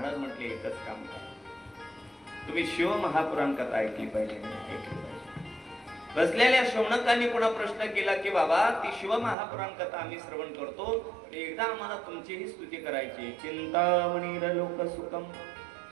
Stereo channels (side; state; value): left; drops out; at 9.3 s